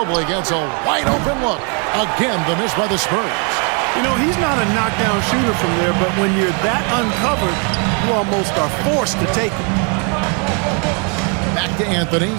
gets a wide open look. Again, the miss by the Spurs. You know, he's not a knockdown shooter from there, but when you're that uncovered, you almost are forced to take it. Back to Anthony.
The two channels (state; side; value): quieter; left; 36.7 dB